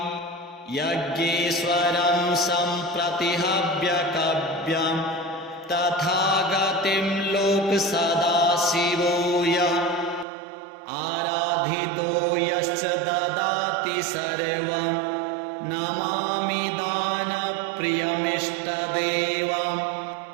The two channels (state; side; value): drops out; left; at 10.2 s